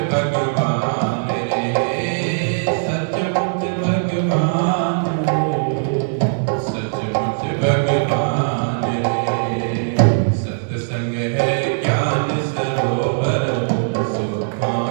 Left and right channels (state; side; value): silent; left; digital silence